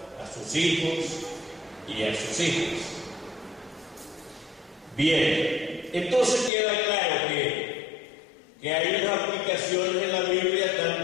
a sus hijos y a sus hijas. Bien, entonces queda claro que hay unas aplicaciones en la Biblia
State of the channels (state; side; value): drops out; right; at 6.5 s